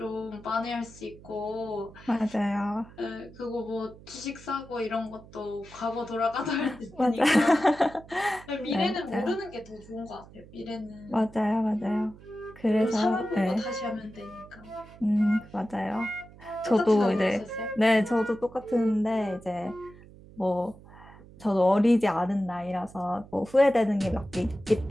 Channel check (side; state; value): right; noise; hum, 21 dB below the sound